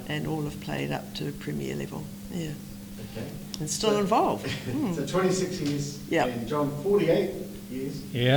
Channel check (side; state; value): both; identical; correlation 1.00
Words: and all have played up to premier level. Yeah. Okay. And still involved. So 26 years, Yep. and John, 48 years.